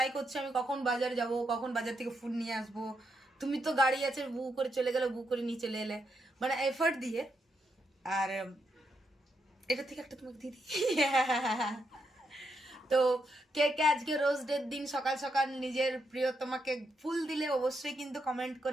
করছি আমি কখন বাজার যাব, কখন বাজার থেকে ফুড নিয়ে আসবো। তুমি তো গাড়ি আছে, বুক করে চলে গেলে, বুক করে নিয়ে চলে এলে, মানে এফর্ট দিয়ে। আর এটা থেকে একটা তোমাকে দিয়ে দিই। তো কে কে আজকে রোজ ডের দিন সকাল সকাল নিজের প্রিয় তোমাকে ফুল দিলে অবশ্যই কিন্তু কমেন্ট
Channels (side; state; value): both; normal; correlation 0.81